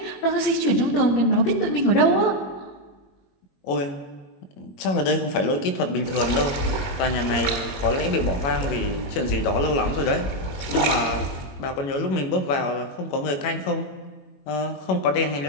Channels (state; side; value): late; right; 21 ms